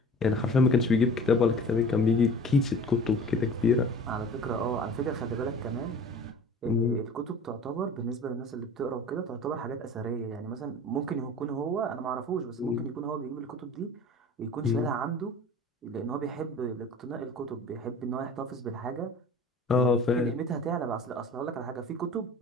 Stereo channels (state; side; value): normal; both; correlation 0.42